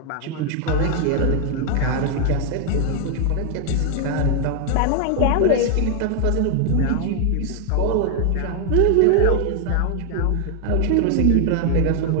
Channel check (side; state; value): both; different; correlation 0.00